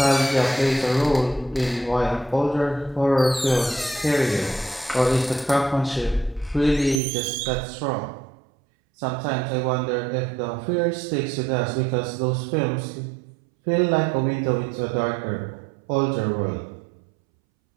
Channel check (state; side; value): drops out; left; at 7.0 s